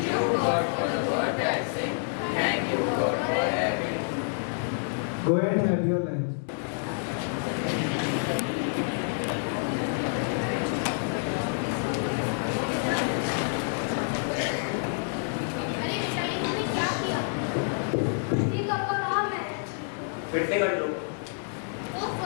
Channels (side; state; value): right; silent; digital silence